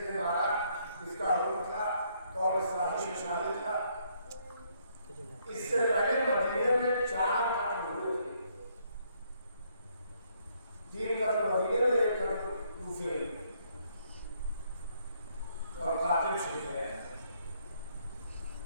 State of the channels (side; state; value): both; inverted; correlation -0.70